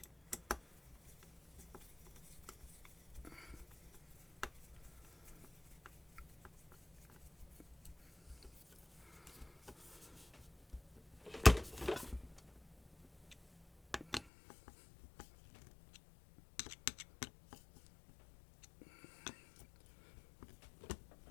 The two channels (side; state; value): right; drops out; at 14.2 s